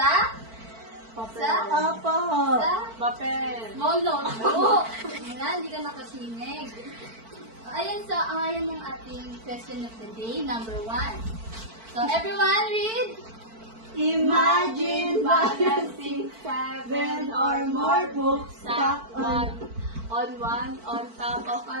Papel. small notebook. Ayan, hindi ka nakasinig. Ayan, so ayan yung ating question of the day, number 1. So everyone read. Imagine balancing 7 or more books stacked on top of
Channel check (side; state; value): left; late; 4.5 ms